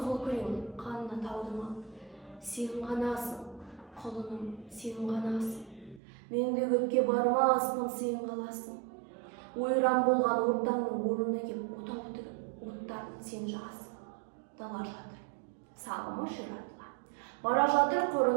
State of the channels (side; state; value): left; drops out; at 6.0 s